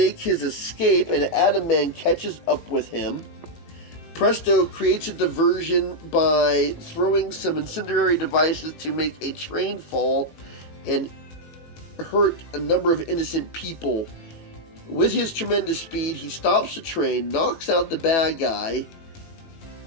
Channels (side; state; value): right; late; 18 ms